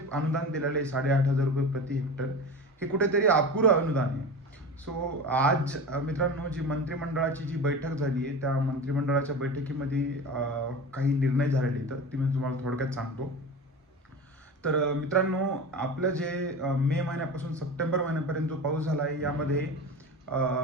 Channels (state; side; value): normal; both; correlation 0.30